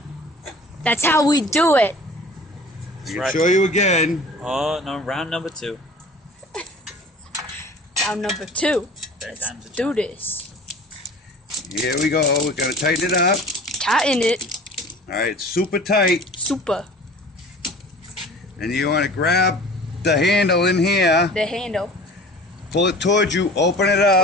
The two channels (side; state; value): both; normal; correlation 0.43